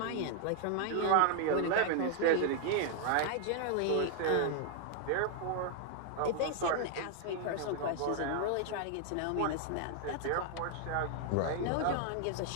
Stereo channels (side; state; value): both; different; correlation 0.00